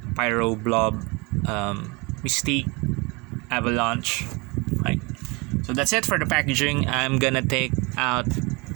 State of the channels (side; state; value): left; quieter; 26.9 dB